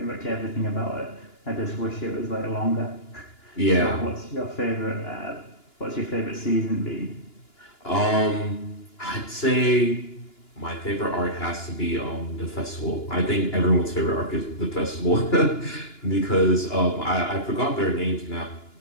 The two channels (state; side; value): late; right; 2.9 ms